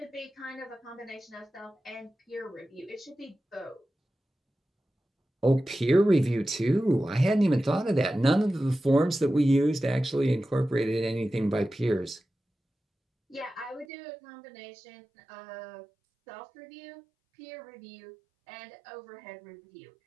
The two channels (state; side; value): drops out; left; at 13.9 s